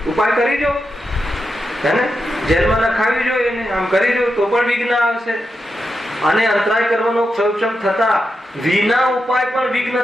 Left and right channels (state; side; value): normal; both; correlation 0.87